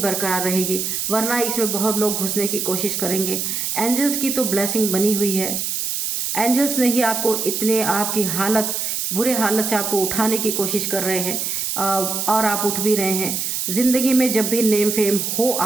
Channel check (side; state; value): right; noise; hiss, 2 dB below the sound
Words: रहेगी, वरना इसमें बहुत लोग घुसने की कोशिश करेंगे। एंजल्स की तो ब्लेसिंग बनी हुई है। एंजल्स ने ही आपको इतने आपकी हालत बुरे हालत से आपको उठाने की कोशिश कर रहे हैं, और आप उठ भी रहे हैं। ज़िंदगी में जब भी नेम फेम हो